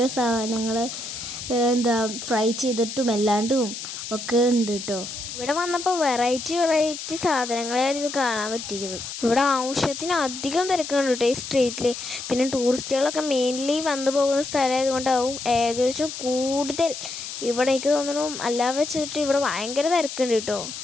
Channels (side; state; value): left; noise; hiss, 8 dB below the sound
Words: സാധനങ്ങൾ ഫ്രൈ ചെയ്തിട്ടും അല്ലാണ്ടും ഒക്കെ ഉണ്ട് കേട്ടോ. ഇവിടെ വന്നപ്പോൾ വെറൈറ്റി സാധനങ്ങളായിരുന്നു കാണാൻ പറ്റിയത്. ഇവിടെ ആവശ്യത്തിന് അധികം തിരക്കുണ്ട് കേട്ടോ ഈ സ്ട്രീറ്റിൽ. പിന്നെ ടൂറിസ്റ്റുകളൊക്കെ മെയിൻലി വന്നു പോകുന്ന സ്ഥലമായതുകൊണ്ടാവും ഏകദേശം കൂടുതൽ. ഇവിടെ എനിക്ക് തോന്നുന്നു അല്ലാതെ വെച്ചിട്ട് ഇവിടെ ഭയങ്കര തിരക്കുണ്ട് കേട്ടോ.